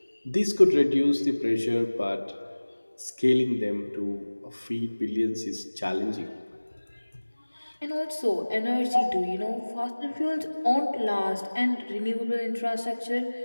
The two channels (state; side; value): inverted; both; correlation -1.00